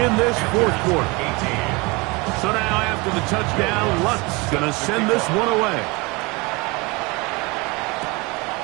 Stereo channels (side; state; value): left; quieter; 26.0 dB